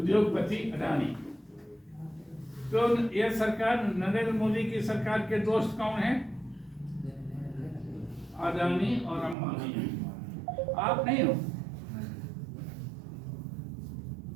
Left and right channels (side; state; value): left; drops out; at 9.3 s